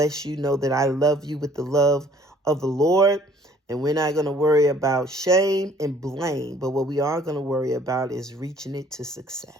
you. Know that I love you with the love of the Lord. And we're not going to worry about shame and blame, but what we are going to worry about is reaching it to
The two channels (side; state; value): both; normal; correlation 0.57